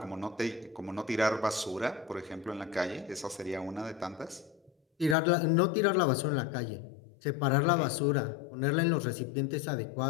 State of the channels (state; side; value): drops out; right; at 5.2 s